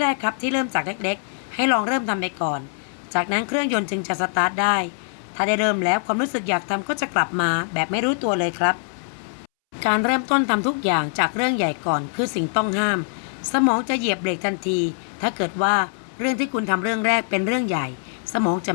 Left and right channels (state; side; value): silent; right; 63 dB below the other